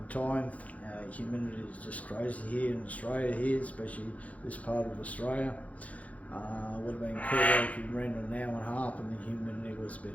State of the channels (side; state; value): right; late; 0.068 ms